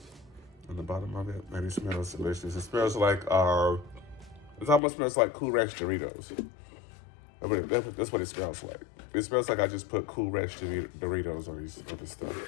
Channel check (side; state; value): right; drops out; at 4.8 s